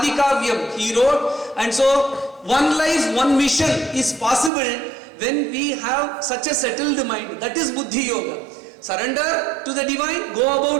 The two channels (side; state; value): left; drops out; at 4.5 s